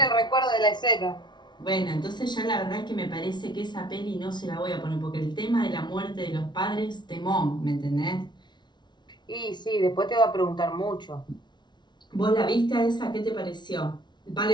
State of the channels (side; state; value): right; late; 0.21 ms